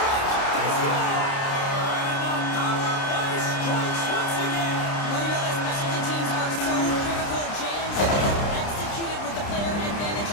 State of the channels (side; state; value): right; late; 30 ms